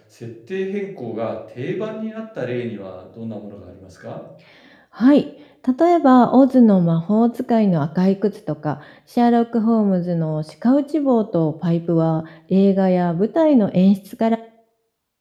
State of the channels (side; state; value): both; identical; correlation 1.00